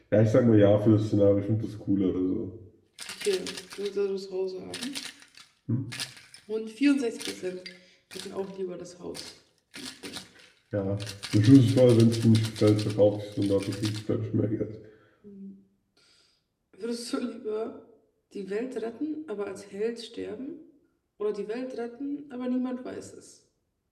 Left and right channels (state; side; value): identical; both; correlation 1.00